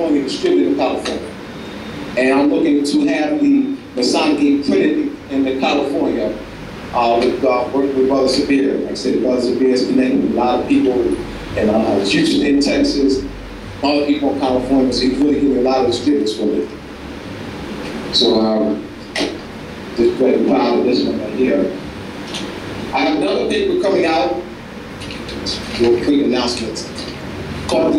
distributed in California. And I'm looking to have the Masonic game printed in California working with Brother Sabir. Like I said, Brother Sabir is connected with a lot of people in Houston, in Texas, other people in California, so he's really giving a lot of distributors from it. So just very proud of this one right here. I have another paper coming out, real quick announcements, called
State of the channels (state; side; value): identical; both; correlation 1.00